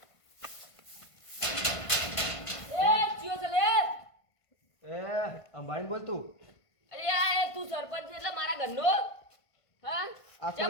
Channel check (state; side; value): late; right; 1.5 ms